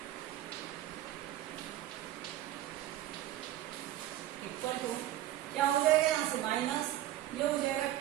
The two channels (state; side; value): quieter; left; 14.0 dB